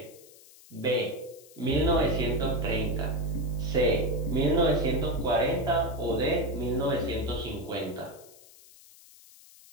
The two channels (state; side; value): noise; left; hiss, 23 dB below the sound